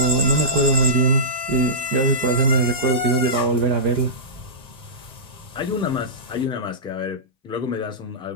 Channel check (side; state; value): left; late; 1.9 ms